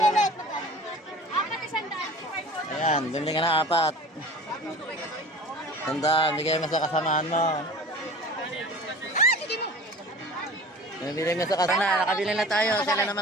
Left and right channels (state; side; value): normal; both; correlation 0.41